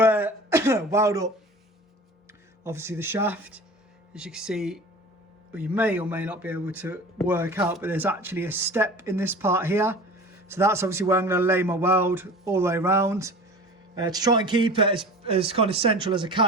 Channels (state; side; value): normal; both; correlation 0.38